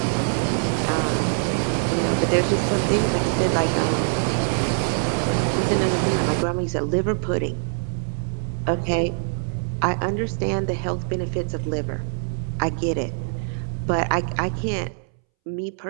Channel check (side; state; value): left; silent; 63 dB below the other